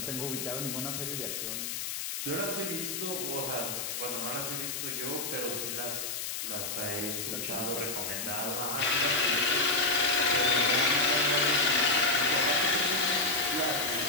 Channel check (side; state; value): left; noise; hiss, 4 dB below the sound